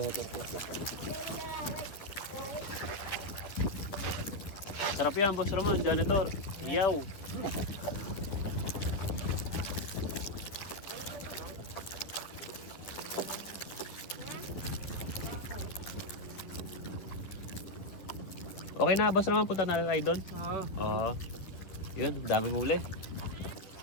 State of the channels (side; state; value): right; late; 11 ms